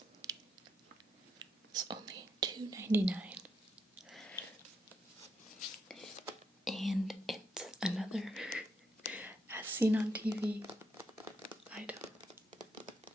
was only $2.99. And it's another as seen on TV item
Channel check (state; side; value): normal; both; correlation 0.79